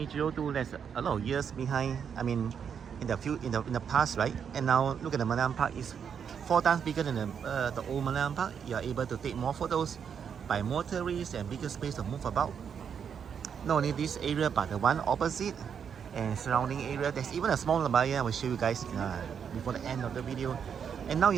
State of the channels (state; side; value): quieter; left; 7.4 dB